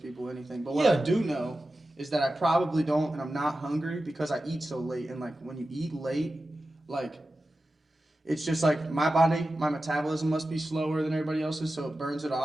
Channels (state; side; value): normal; both; correlation 0.93